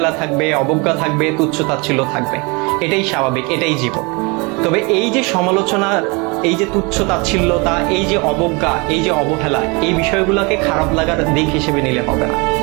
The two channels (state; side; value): quieter; left; 28.8 dB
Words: থাকবে, অবজ্ঞা থাকবে, তুচ্ছ-তাচ্ছিল্য থাকবে। এটাই স্বাভাবিক, এটাই জীবন। তবে এই যে সমালোচনার, এই যে তুচ্ছ-তাচ্ছিল্যতা, এই যে অবজ্ঞা, এই যে অবহেলা, এই বিষয়গুলোকে খারাপ লাগার দিক হিসেবে নিলে হবে না।